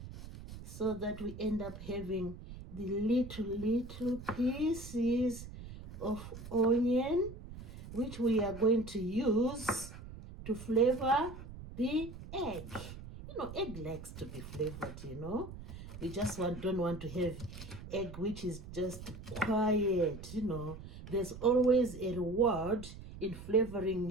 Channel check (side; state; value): right; noise; rumble, 13 dB below the sound